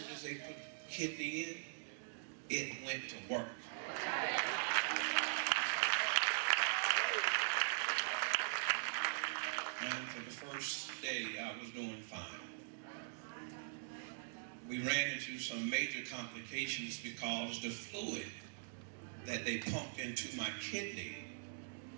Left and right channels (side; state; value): left; silent; digital silence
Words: as they put the kidney in, it went to work. And for the first day, I was doing fine. We ran into some major complications because the fluid that they pumped into my kidney